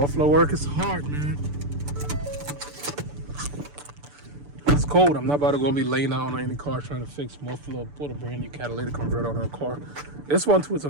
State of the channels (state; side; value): late; left; 6.9 ms